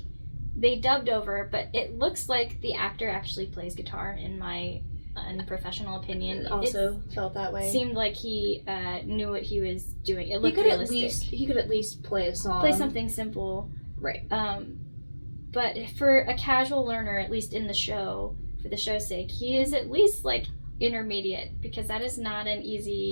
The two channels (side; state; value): both; inverted; correlation -1.00